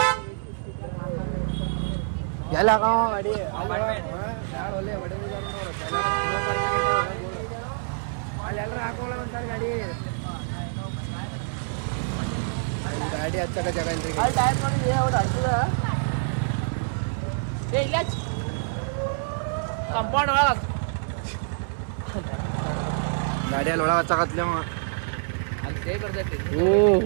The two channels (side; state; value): left; silent; 61 dB below the other